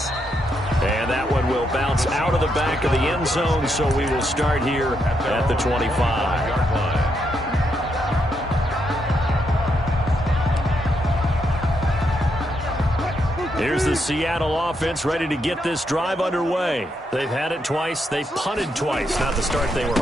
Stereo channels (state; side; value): normal; both; correlation 0.79